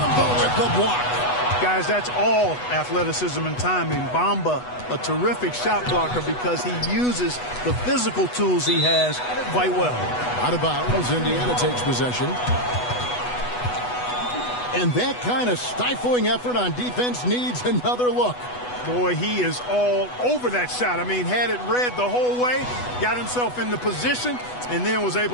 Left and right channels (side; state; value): right; late; 8.1 ms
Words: with the block. Guys, that's all athleticism and timing. Bamba, a terrific shot blocker because he uses the physical tools he has quite well. Out of bounds, Indiana takes possession. And that kind of stifling effort on defense needs another look. Boy, he is all over that shot. I mean, had it read the whole way, got himself in the position, and then was